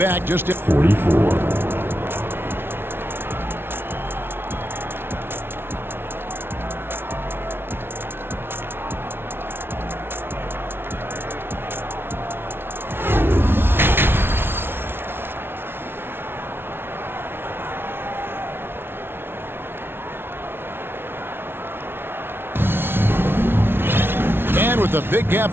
just at 44. With a big gap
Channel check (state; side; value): late; left; 0.11 ms